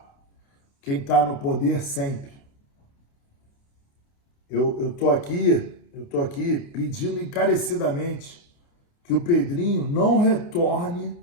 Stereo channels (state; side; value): late; right; 29 ms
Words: quem está no poder sempre. Eu tô aqui pedindo encarecidamente que o Pedrinho não retorne